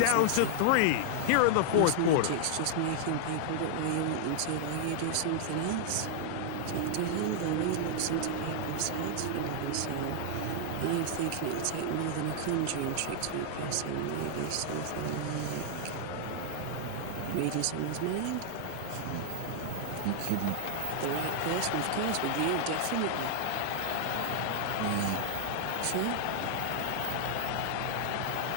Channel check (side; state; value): both; different; correlation 0.00